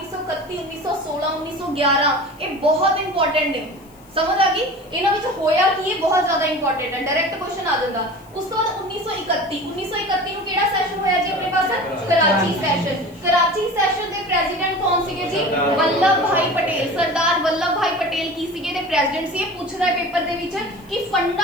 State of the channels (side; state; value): left; noise; hiss, 28 dB below the sound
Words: 1916 1911 ਇਹ ਬਹੁਤ ਇੰਪੋਰਟੈਂਟ ਨੇ। ਸਮਝ ਆ ਗਈ? ਇਹਨਾਂ ਵਿੱਚ ਹੋਇਆ ਕੀ ਹੈ? ਬਹੁਤ ਜ਼ਿਆਦਾ ਇੰਪੋਰਟੈਂਟ ਹੈ, ਡਾਇਰੈਕਟ ਕੁਐਸਚਨ ਆ ਜਾਂਦਾ। ਉਸ ਤੋਂ ਬਾਅਦ 1931 ਨੂੰ ਕਿਹੜਾ ਸੈਸ਼ਨ ਹੋਇਆ ਜੀ ਆਪਣੇ ਪਾਸ? ਕਰਾਚੀ ਸੈਸ਼ਨ। ਕਰਾਚੀ ਸੈਸ਼ਨ ਦੇ ਪ੍ਰੈਜ਼ੀਡੈਂਟ ਕੌਣ ਸੀਗੇ ਜੀ? ਵੱਲਭ ਭਾਈ ਪਟੇਲ। ਸਰਦਾਰ ਵੱਲਭ ਭਾਈ ਪਟੇਲ ਕੀ ਸੀਗੇ ਦੇ ਪ੍ਰੈਜ਼ੀਡੈਂਟ ਸੀ। ਇਹ ਪੁੱਛਦਾ ਹੈ ਪੇਪਰ ਦੇ ਵਿੱਚ ਕਿ